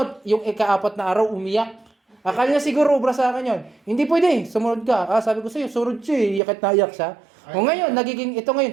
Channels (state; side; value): drops out; left; at 6.4 s